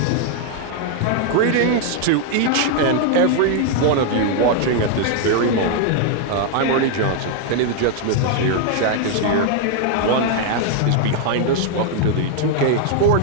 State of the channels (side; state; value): both; different; correlation 0.00